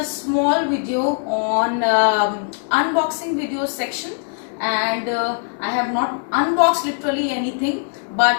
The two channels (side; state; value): right; silent; 65 dB below the other